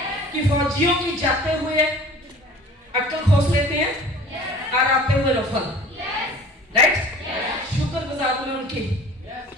कि फौजियों की जाते हुए अक्ल खोस लेते हैं और आते हुए रफल। राइट? शुक्रगुजार हूं उनकी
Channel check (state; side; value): normal; both; correlation 0.45